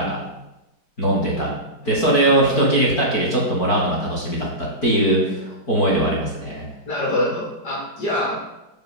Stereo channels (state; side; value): late; right; 4.6 ms